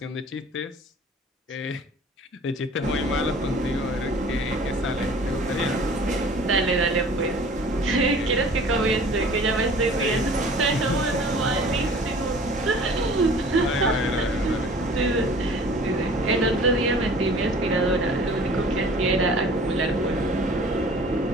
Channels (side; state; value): both; normal; correlation 0.47